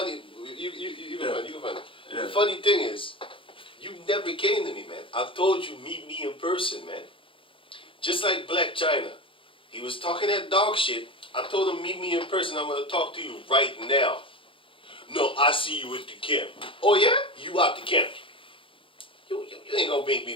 you can find it. Yeah. The funny thing is, you never came to me, man. I told you, meet me in person, man. Just like Black China. He was talking that dog shit. I told him, meet me in person. I'm going to talk to you right now. No, I see you at the camp. Oh, yeah? You out the camp. You ain't going to make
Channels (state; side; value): late; right; 0.25 ms